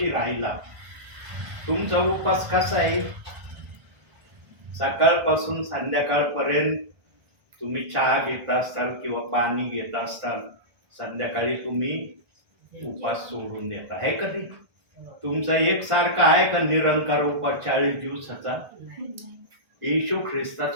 राहिला. तुमचा उपास कसा आहे? सकाळपासून संध्याकाळपर्यंत तुम्ही चहा घेत असताल किंवा पाणी घेत असताल, संध्याकाळी तुम्ही उपास सोडून देता, आहे का ते? तुमचा एकसारखा आहे का निरंकार उपास 40 दिवसाचा? येशू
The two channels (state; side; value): late; left; 1.5 ms